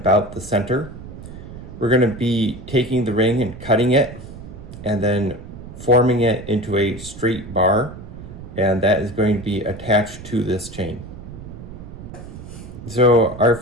the center. We're going to be taking the ring and cutting it and then forming it into a straight bar, and that is going to be attached to this chain. So our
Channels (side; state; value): right; noise; rumble, 13 dB below the sound